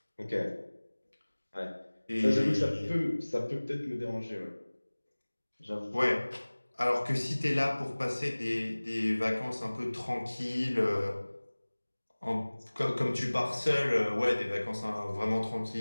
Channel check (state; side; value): inverted; both; correlation -1.00